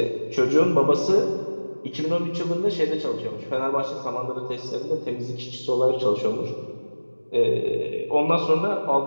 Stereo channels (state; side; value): inverted; both; correlation -1.00